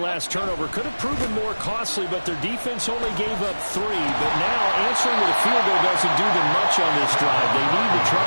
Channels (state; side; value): inverted; both; correlation -1.00